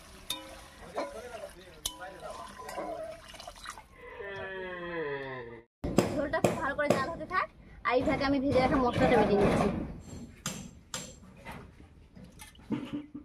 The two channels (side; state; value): both; identical; correlation 1.00